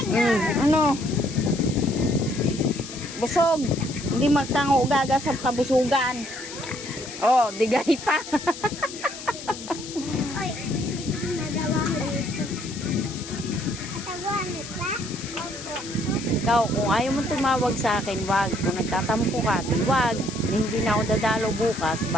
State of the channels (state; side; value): noise; left; hiss, 12 dB below the sound